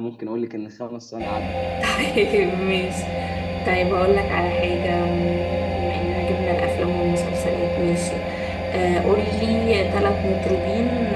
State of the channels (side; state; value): both; identical; correlation 1.00